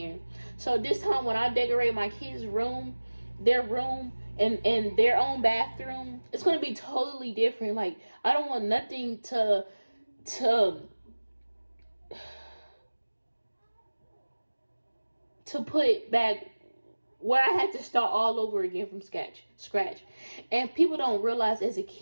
So this time when I decorate my kids' room, their room, and their own bathroom, it's gonna be totally different. Like, I don't want nothing to put back where I had to start all over again from scratch. And people don't realize, as a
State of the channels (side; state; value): both; inverted; correlation -1.00